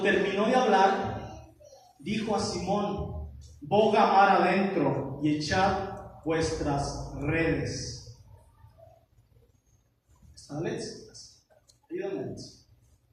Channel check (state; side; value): identical; both; correlation 1.00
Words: terminó de hablar, dijo a Simón: boga mar adentro y echad vuestras redes. ¿Está Alex? Ayúdame, Alex.